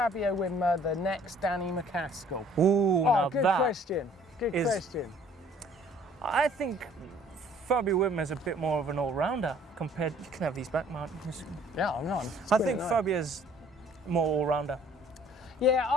Wimmer the next Danny MacAskill? Ooh, now good that. question. Good question. I think Fabio Whitmer's a bit more of an all-rounder compared. You can have these back, Martin. Yeah, I'm not. I think Fabio's more all-rounder. Yeah,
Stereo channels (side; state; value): both; normal; correlation 0.56